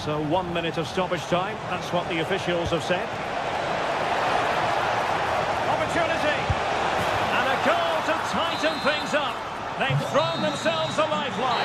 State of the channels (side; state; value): both; identical; correlation 1.00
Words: 1 minute of stoppage time, that's what the officials have said. Opportunity! And a goal to tighten things up. They've thrown themselves a